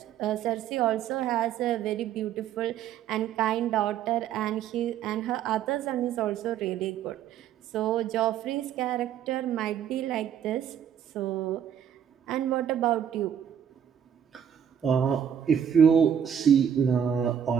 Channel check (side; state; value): left; quieter; 8.8 dB